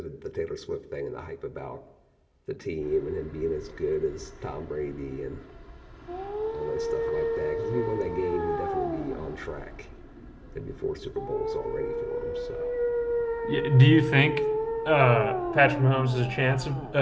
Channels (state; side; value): identical; both; correlation 1.00